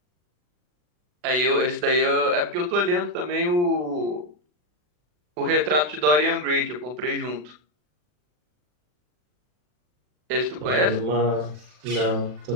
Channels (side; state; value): left; late; 40 ms